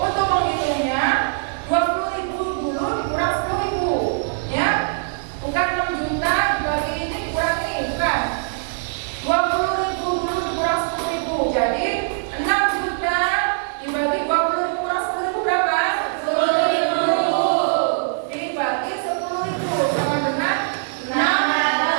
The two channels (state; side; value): silent; left; digital silence